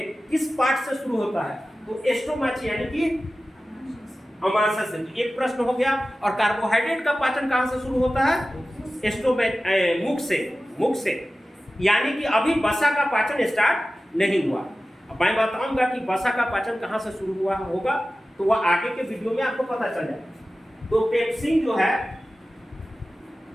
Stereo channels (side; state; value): both; normal; correlation 0.95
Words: किस पार्ट से शुरू होता है, तो एस्टोमाची यानी कि अमाशय से। एक प्रश्न हो गया। और कार्बोहाइड्रेट का पाचन कहां से शुरू होता है, मुख से, यानी कि अभी वसा का पाचन स्टार्ट नहीं हुआ। अब मैं बताऊंगा कि वसा का पाचन कहां से शुरू हुआ होगा, तो वह आगे के वीडियो में आपको पता चल जाएगा। तो पेप्सिन जो है